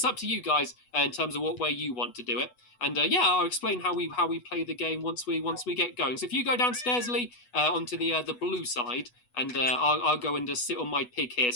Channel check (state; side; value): late; right; 8.2 ms